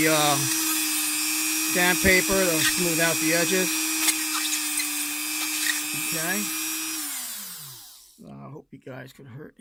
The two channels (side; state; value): both; identical; correlation 1.00